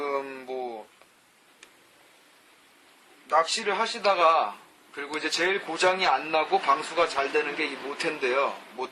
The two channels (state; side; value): identical; both; correlation 1.00